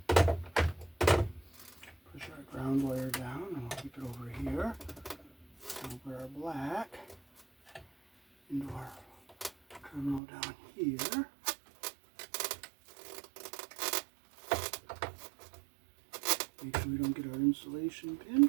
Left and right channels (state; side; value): drops out; left; at 10.2 s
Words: our ground wire down and we'll keep it over here. We'll put our black into our terminal down here. Make sure we don't get our insulation